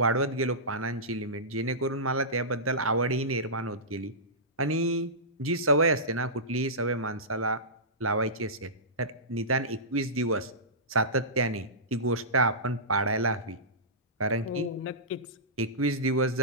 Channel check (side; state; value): both; normal; correlation -0.19